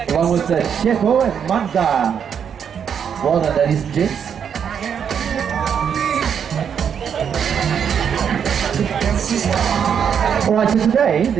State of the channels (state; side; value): quieter; left; 7.7 dB